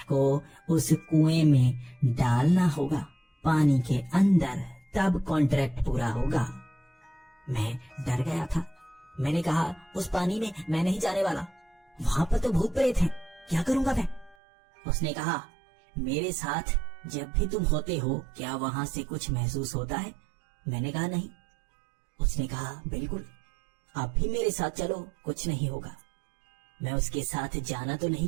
को उस कुएं में डालना होगा पानी के अंदर, तब कॉन्ट्रैक्ट पूरा होगा। मैं डर गया था। मैंने कहा, उस पानी में मैं नहीं जाने वाला, वहां पर तो भूत प्रेत हैं, क्या करूंगा मैं? उसने कहा, मेरे साथ जब भी तुम होते हो क्या वहां से कुछ महसूस होता है? मैंने कहा, नहीं। उसने कहा, बिल्कुल, आप भी मेरे साथ चलो, कुछ नहीं होगा। मैं उसके साथ जाना तो नहीं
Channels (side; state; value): left; drops out; at 14.4 s